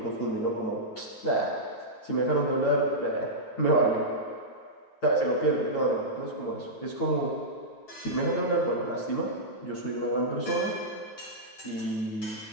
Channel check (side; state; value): right; late; 9.3 ms